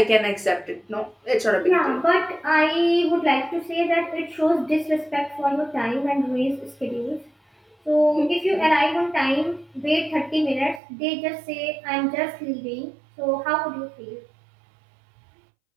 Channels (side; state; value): left; drops out; at 10.8 s